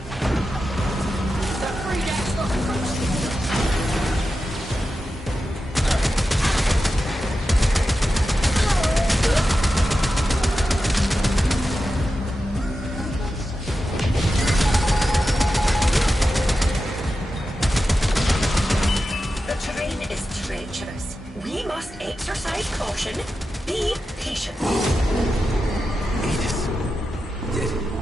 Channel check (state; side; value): normal; both; correlation 0.91